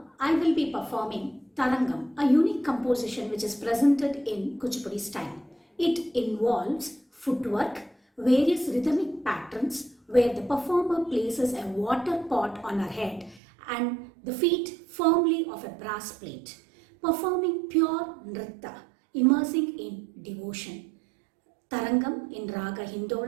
I will be performing Tarangam, a unique composition which is presented in Kuchipudi style. It involves footwork, various rhythmic patterns where the performer places a water pot on her head and the feet firmly of a brass plate, performing pure nritta, immersing in devotion. Tarangam in Raga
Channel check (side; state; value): left; drops out; at 13.4 s